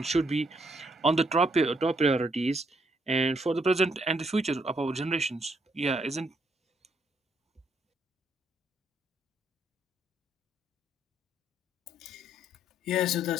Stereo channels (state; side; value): normal; both; correlation 0.72